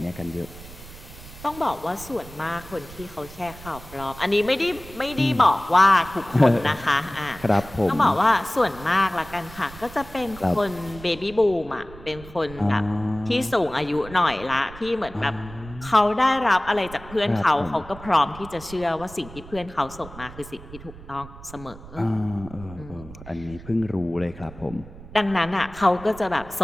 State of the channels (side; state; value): right; noise; rumble, 17 dB below the sound